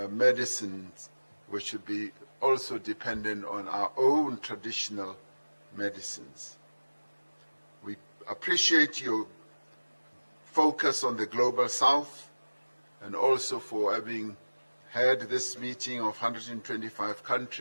medicines. We should be also dependent on our own traditional medicines. We appreciate your focus on the Global South, and also for having had this meeting of 125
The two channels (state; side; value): inverted; both; correlation -1.00